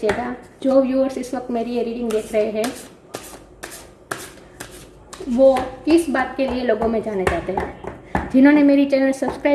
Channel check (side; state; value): both; identical; correlation 1.00